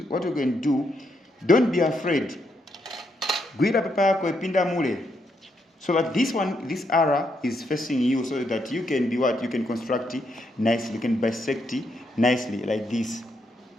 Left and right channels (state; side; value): normal; both; correlation 0.78